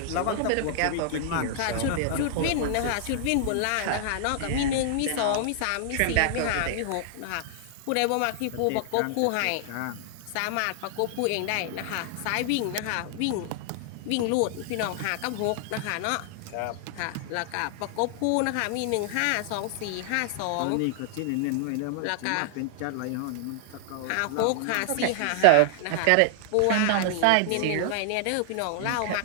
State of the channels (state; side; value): different; both; correlation -0.01